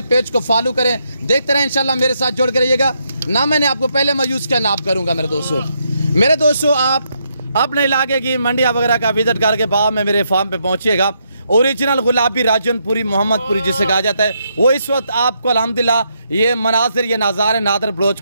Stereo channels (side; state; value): both; inverted; correlation -0.78